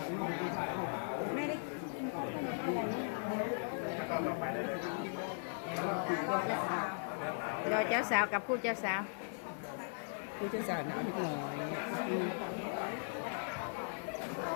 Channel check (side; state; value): right; silent; 52 dB below the other